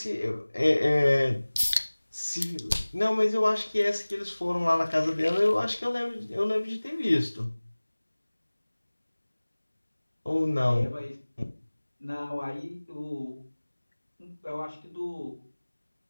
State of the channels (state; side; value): inverted; both; correlation -1.00